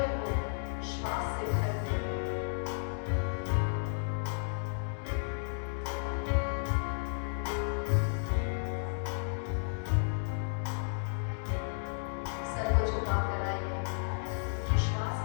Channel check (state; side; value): silent; right; digital silence